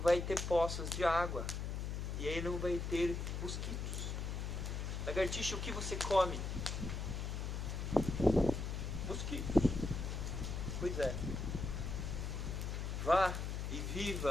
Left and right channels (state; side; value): noise; left; hum, 3 dB below the sound